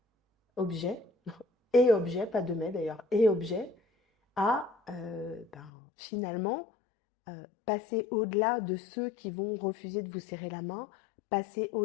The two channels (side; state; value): right; drops out; at 5.7 s